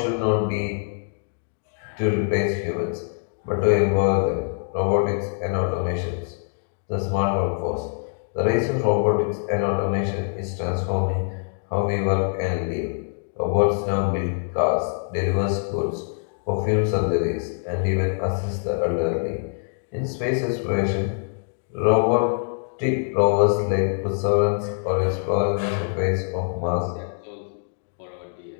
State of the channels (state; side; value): silent; right; digital silence